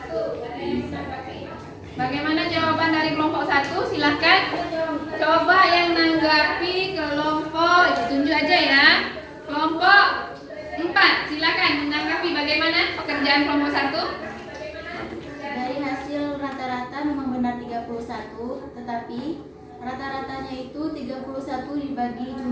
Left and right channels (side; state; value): both; identical; correlation 1.00